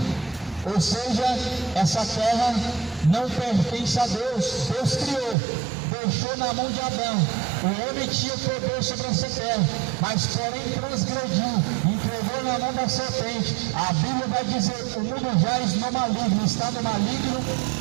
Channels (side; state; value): left; drops out; at 5.4 s